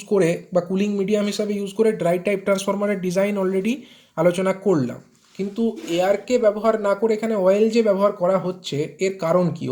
করে বা কুলিং মিডিয়াম হিসাবে ইউজ করে ড্রাই টাইপ ট্রান্সফরমারের ডিজাইন অলরেডি আলোচনা করলাম, কিন্তু এয়ারকে ব্যবহার না করে এখানে অয়েল যে ব্যবহার করা হচ্ছে, এর কারণ কি?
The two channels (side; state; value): both; identical; correlation 1.00